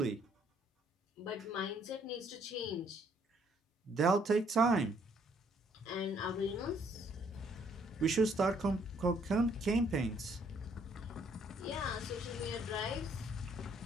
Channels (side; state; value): both; normal; correlation 0.66